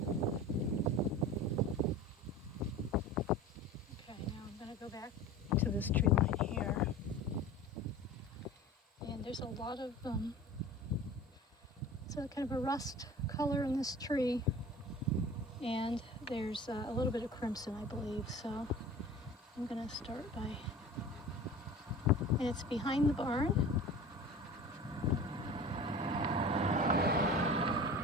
Go back to this tree line here, and there's a lot of it's a kind of a rust color in this tree, and there's a little bit of crimson, I believe. So I'm gonna start by, and it's behind the barn,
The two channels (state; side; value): normal; both; correlation 0.38